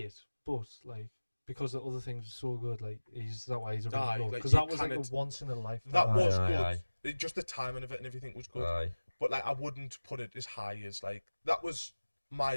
but like because the other things were so good, like that why he's a Aye, really like, because you that was like a kinda once in a lifetime. That Aye, was aye, good. aye. Just the timing of it and everything was good. Aye. But like I wouldn't put it as high as like that was my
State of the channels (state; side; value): inverted; both; correlation -1.00